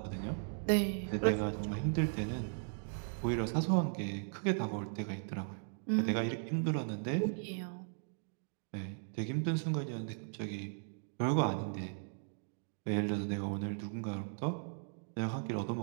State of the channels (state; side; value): silent; left; digital silence